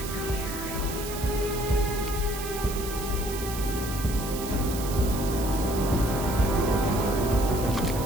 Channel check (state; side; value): noise; right; hiss, 9 dB below the sound